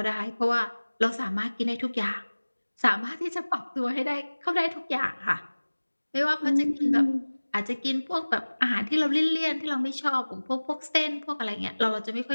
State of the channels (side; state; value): both; inverted; correlation -1.00